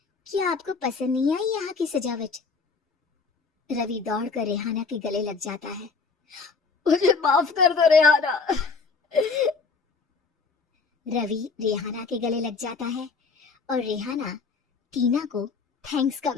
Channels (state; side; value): quieter; right; 4.7 dB